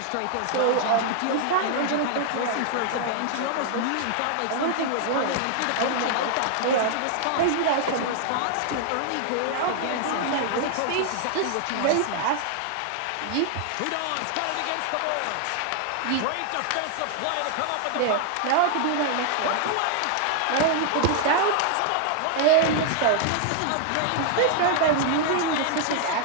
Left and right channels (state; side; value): different; both; correlation 0.00